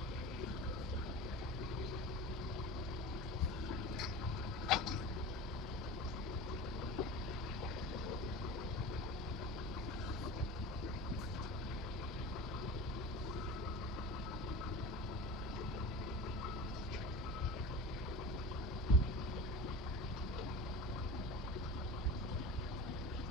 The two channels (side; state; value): both; normal; correlation 0.31